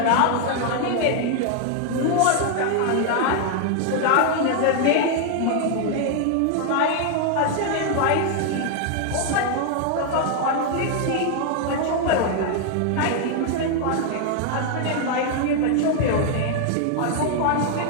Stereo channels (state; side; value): different; both; correlation 0.00